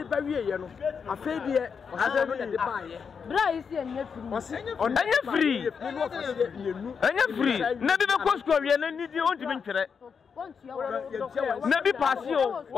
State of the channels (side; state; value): right; quieter; 6.2 dB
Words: ba wie ye no afa bi e asa no de ba ye bra isi enye free enye free na bi be ko school wie na nidi on ti bi ntwere na bi pasio